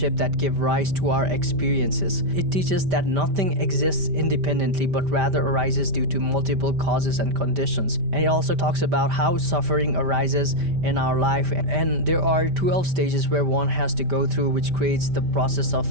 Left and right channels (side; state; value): left; late; 5.1 ms